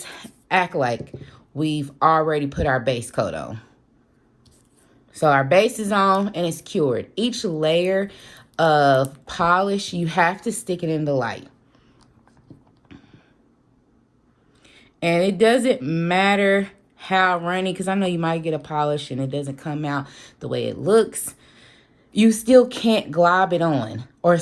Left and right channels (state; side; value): identical; both; correlation 1.00